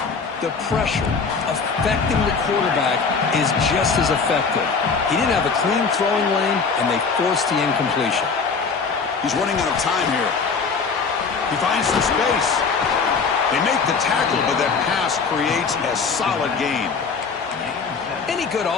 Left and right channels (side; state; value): right; quieter; 5.1 dB